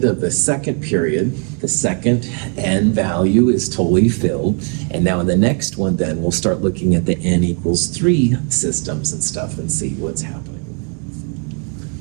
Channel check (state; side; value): quieter; left; 39.8 dB